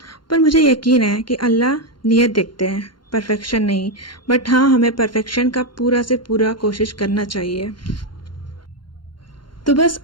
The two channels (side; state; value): right; late; 0.72 ms